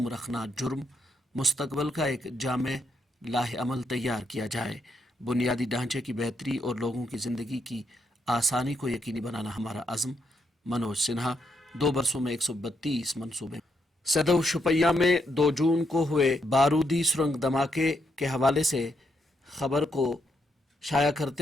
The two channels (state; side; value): normal; both; correlation 0.78